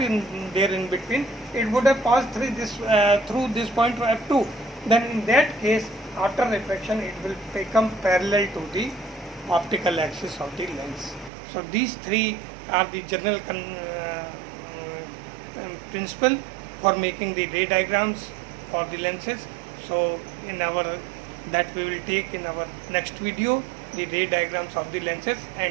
there in between, it would have passed through this point to f2, then in that case, after reflection, it will become parallel to the optical axis of the lens. So these three are the general principle for making the ray diagrams for the lenses. So that we will take in our next video, the ray diagrams of the lenses,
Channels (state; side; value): drops out; left; at 11.3 s